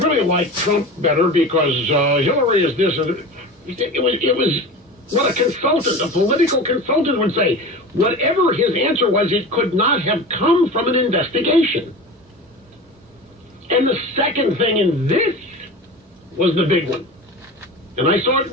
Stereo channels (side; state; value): both; normal; correlation 0.32